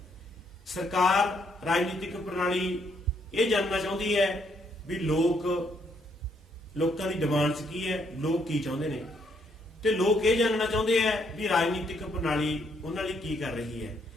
ਸਰਕਾਰ ਰਾਜਨੀਤਿਕ ਪ੍ਰਣਾਲੀ ਇਹ ਜਾਣਨਾ ਚਾਹੁੰਦੀ ਹੈ ਵੀ ਲੋਕਾਂ ਦੀ ਡਿਮਾਂਡਸ ਕੀ ਹੈ, ਲੋਕ ਕੀ ਚਾਹੁੰਦੇ ਨੇ, ਤੇ ਲੋਕ ਇਹ ਜਾਣਨਾ ਚਾਹੁੰਦੇ ਹੈ ਵੀ ਰਾਜਨੀਤਿਕ ਪ੍ਰਣਾਲੀ ਉਹਨਾਂ ਲਈ ਕੀ ਕਰ ਰਹੀ ਹੈ।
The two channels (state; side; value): normal; both; correlation 0.72